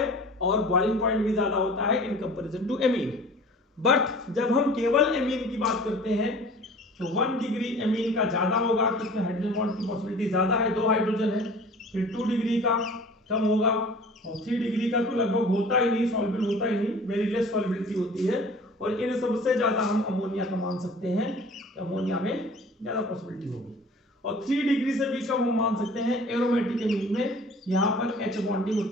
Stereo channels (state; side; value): normal; both; correlation 0.45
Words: और बॉइलिंग पॉइंट भी ज्यादा होता है in comparison to amine. But जब हम केवल एमीन की बात करते हैं तो 1 डिग्री एमीन का ज्यादा होगा, तो इसमें हाइड्रोजन बॉन्ड की पॉसिबिलिटी ज्यादा है, 2 हाइड्रोजन है। फिर 2 डिग्री का कम होगा और 3 डिग्री का तो लगभग होता ही नहीं, सॉल्युबल होता ही नहीं, वेरी लेस सॉल्युबिलिटी होती है। और इन सबसे ज्यादा हम अमोनिया का मान सकते हैं, अमोनिया में ज्यादा पॉसिबिलिटी होगी। और 3 डिग्री से भी कम हम मान सकते हैं एरोमेटिक एमीन में, यहाँ पर H बॉन्डिंग